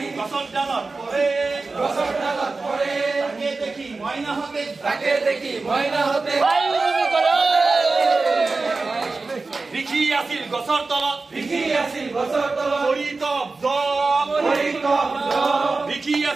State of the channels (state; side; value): quieter; left; 3.8 dB